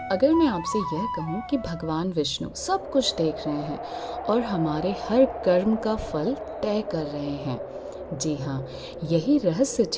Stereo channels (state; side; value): identical; both; correlation 1.00